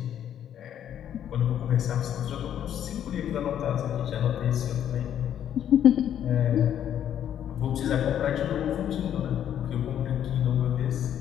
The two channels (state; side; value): quieter; right; 10.0 dB